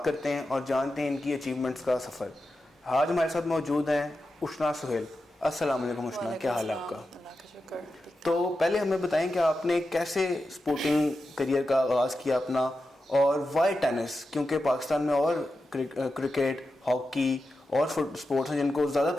کرتے ہیں اور جانتے ہیں ان کی اچیومنٹس کا سفر. آج ہمارے ساتھ موجود ہیں اشنا سہیل. السلام علیکم اشنا, کیا حال ہے آپ کا؟ تو پہلے ہمیں بتائیں کہ آپ نے کیسے اسپورٹنگ کریئر کا آغاز کیا اپنا, اور وائی ٹینس, کیونکہ پاکستان میں اور کرکٹ, ہاکی اور اسپورٹس ہیں جن کو زیادہ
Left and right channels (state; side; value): normal; both; correlation 0.90